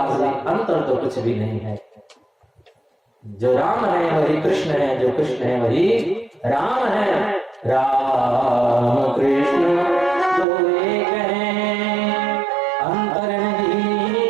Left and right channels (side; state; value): left; drops out; at 10.5 s